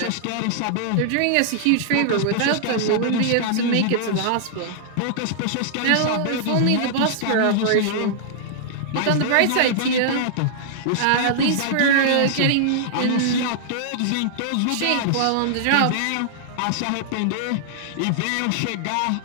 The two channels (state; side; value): different; both; correlation -0.01